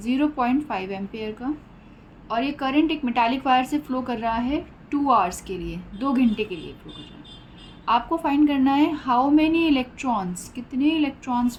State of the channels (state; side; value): identical; both; correlation 1.00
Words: एम्पेयर का और ये करंट एक मेटालिक वायर से फ़्लो कर रहा है 2 आवर्स के लिए, 2 घंटे के लिए फ़्लो कर रहा है। आपको फाइंड करना है हाउ मेनी इलेक्ट्रॉन्स, कितने इलेक्ट्रॉन्स